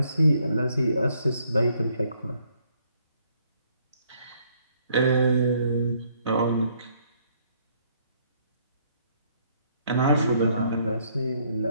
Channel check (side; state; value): both; inverted; correlation -0.67